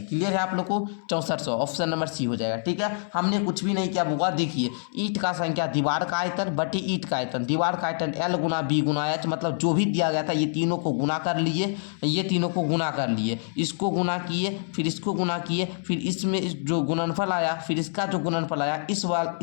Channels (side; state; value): right; silent; 61 dB below the other